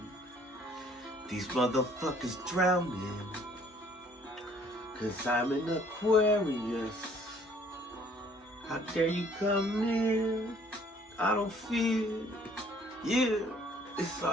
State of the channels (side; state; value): both; normal; correlation 0.59